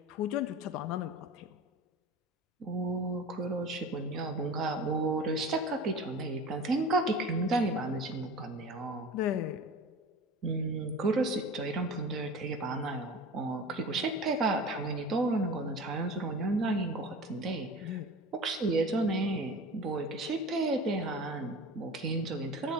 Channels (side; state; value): both; normal; correlation 0.36